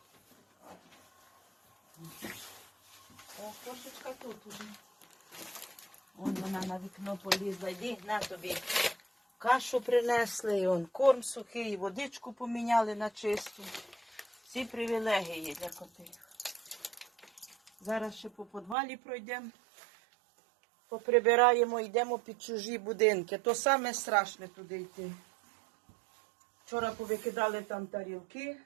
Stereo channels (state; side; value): drops out; left; at 18.8 s